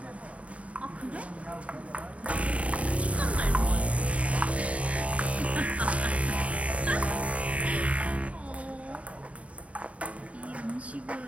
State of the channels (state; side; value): late; left; 0.065 ms